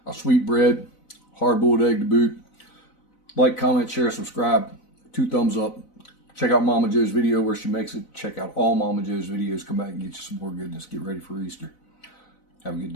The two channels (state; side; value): late; right; 4.0 ms